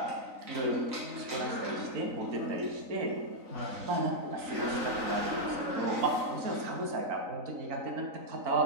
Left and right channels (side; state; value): left; late; 3.9 ms